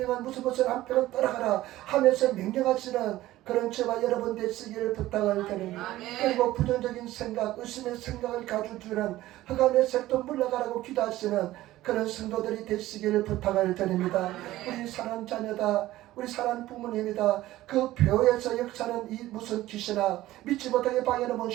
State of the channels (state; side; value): quieter; left; 15.8 dB